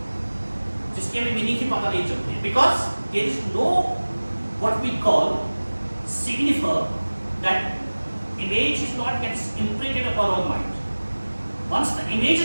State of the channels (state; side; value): inverted; both; correlation -1.00